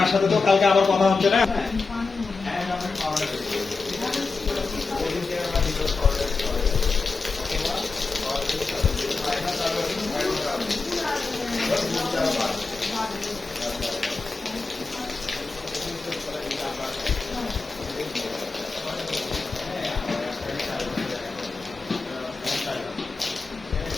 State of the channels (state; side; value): quieter; right; 4.2 dB